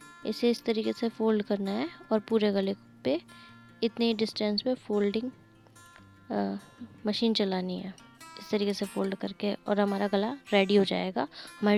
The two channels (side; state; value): both; identical; correlation 1.00